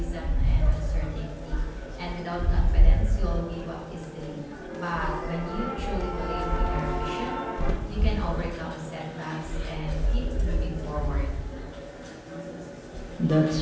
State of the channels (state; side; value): identical; both; correlation 1.00